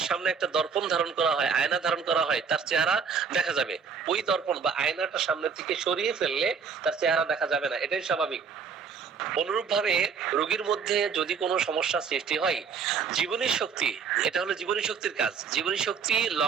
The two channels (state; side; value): quieter; left; 6.0 dB